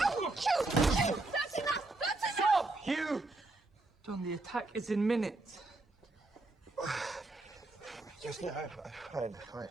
That's enough! That's enough! Stop, Hugh! John, the attack is in minutes. Just no, fine.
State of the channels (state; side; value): quieter; left; 3.0 dB